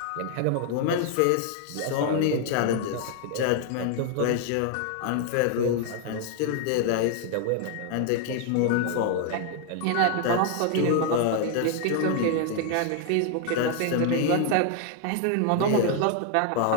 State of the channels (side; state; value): both; different; correlation 0.00